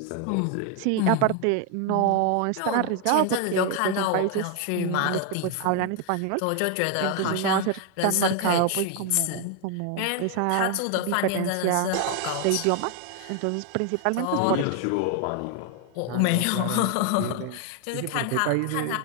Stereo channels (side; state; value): both; different; correlation 0.01